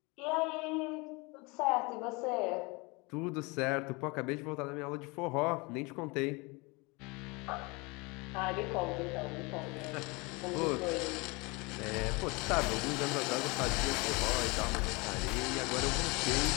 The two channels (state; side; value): quieter; right; 27.1 dB